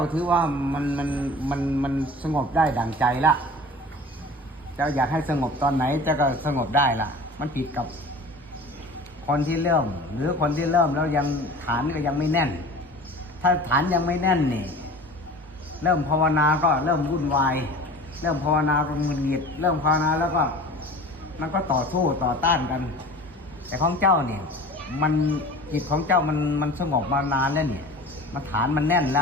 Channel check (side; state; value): both; normal; correlation 0.40